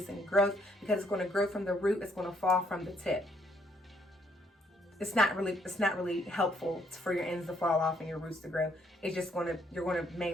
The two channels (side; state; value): both; normal; correlation 0.70